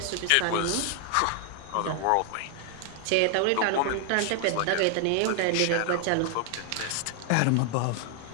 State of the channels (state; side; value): different; both; correlation 0.00